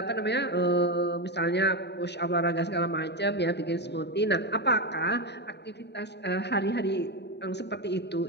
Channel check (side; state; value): right; late; 0.50 ms